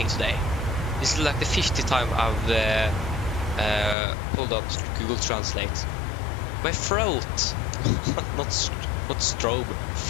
today? This is like the 50th time I've pulled up Google Translate. My throat, not strobe,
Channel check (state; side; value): drops out; right; at 4.0 s